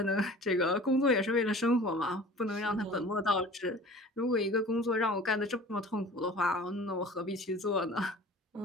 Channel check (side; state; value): both; normal; correlation 0.43